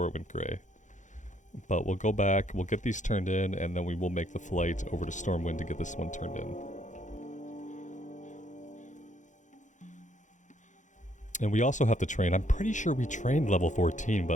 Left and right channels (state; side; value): late; right; 0.36 ms